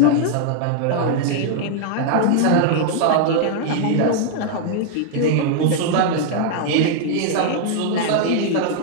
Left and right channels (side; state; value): both; different; correlation 0.00